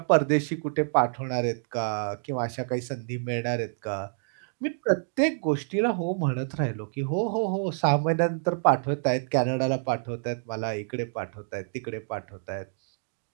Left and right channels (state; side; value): silent; left; digital silence